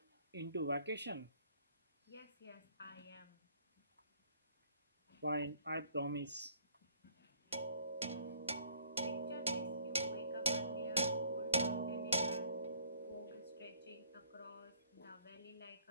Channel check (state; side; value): inverted; both; correlation -0.60